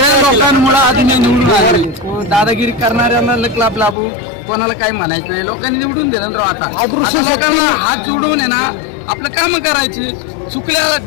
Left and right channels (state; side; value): drops out; right; at 4.0 s